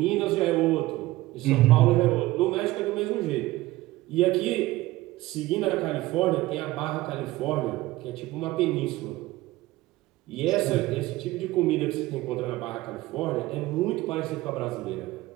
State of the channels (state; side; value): quieter; left; 18.2 dB